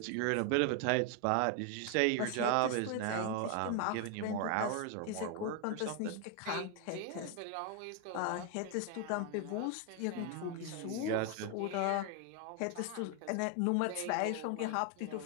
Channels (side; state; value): both; different; correlation 0.01